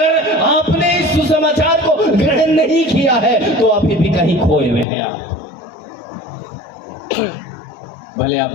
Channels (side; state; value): right; drops out; at 4.9 s